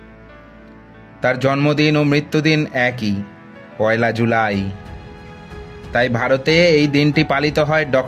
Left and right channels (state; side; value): identical; both; correlation 1.00